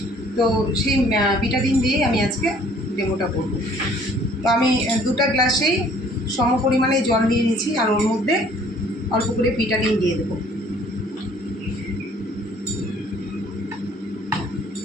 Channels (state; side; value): normal; both; correlation 0.57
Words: তো সেই বিটাডিন দিয়েই আমি আজকে ডেমোটা করব। তো আমি 2টা গ্লাসেই সম পরিমাণে জল নিয়ে নিয়েছি আর ওর মধ্যে অল্প করে বিটাডিন দিয়ে দেবো।